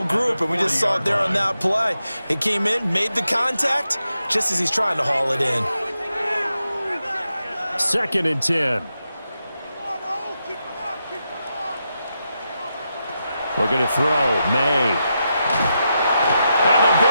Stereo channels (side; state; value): both; inverted; correlation -0.86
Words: group, and we just saw it there on that play. He came in, made the contact, just as he's trying to haul it in. 2nd and 10. We're going to throw May. And the